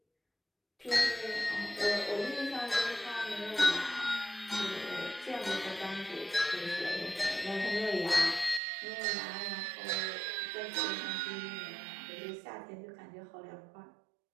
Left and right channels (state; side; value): drops out; left; at 8.6 s